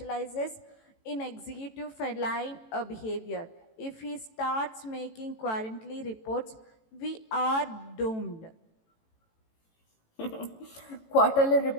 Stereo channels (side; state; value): right; late; 18 ms